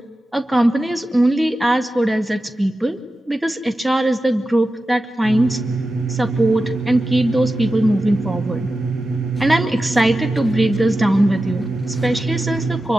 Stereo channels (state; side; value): normal; both; correlation 0.92